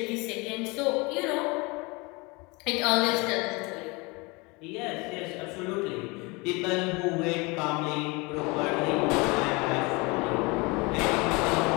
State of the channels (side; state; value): right; quieter; 26.6 dB